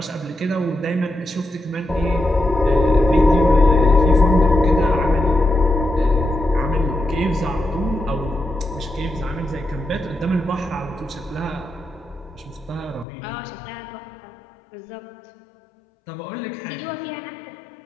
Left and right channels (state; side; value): drops out; right; at 13.1 s